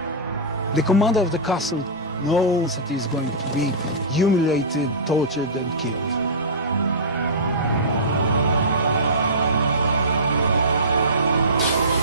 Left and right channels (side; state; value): both; normal; correlation -0.18